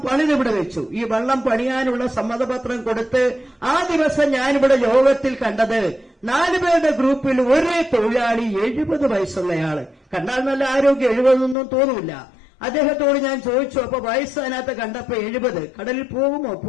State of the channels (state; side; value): drops out; right; at 11.6 s